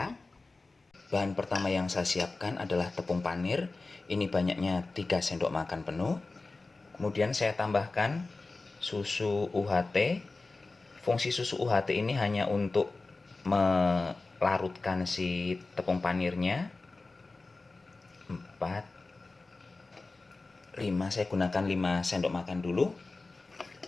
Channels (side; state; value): right; quieter; 3.5 dB